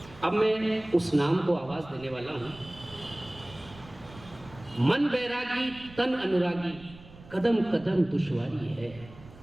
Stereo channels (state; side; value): noise; right; rumble, 20 dB below the sound